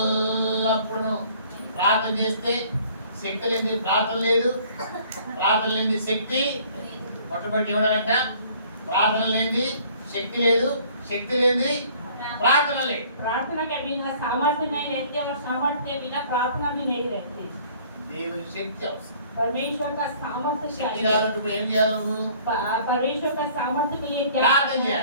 ప్రార్థన చేస్తే శక్తి లేని ప్రార్థన లేదు, ప్రార్థన లేని శక్తి మొట్టమొదటి ఇవ్వడాలంట. ప్రార్థన లేని శక్తి లేదు, శక్తి లేని ప్రార్థన లేదు. प्रार्थना के बिना सामर्थ्य नहीं रहती और सामर्थ्य के बिना प्रार्थना भी नहीं रहती। దేవుని శక్తి అవసరం. परमेश्वर का सामर्थ्य శక్తి चाहिए। కావాలంటే ఇప్పుడు ఏం చేయాలి నువ్వు? परमेश्वर का सामर्थ्य के लिए क्या प्रार्थना करना है? किया।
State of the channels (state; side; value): inverted; both; correlation -0.55